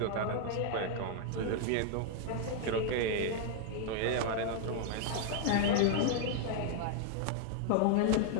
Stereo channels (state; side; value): different; both; correlation 0.00